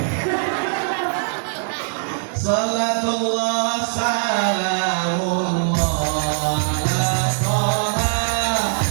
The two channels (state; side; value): silent; left; digital silence